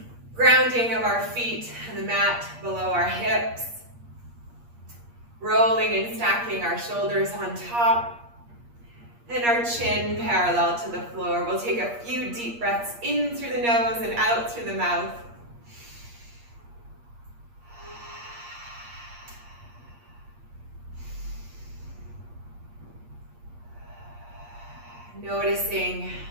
Grounding of our feet on the mat below our hips. Rolling and stacking our shoulders on top. And our chin parallel to the floor. We'll take a few deep breaths in through the nose and out through the mouth. Noticing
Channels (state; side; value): late; left; 8.5 ms